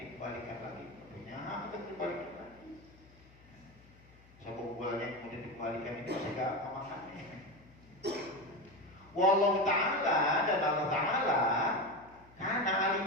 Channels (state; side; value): noise; left; hum, 25 dB below the sound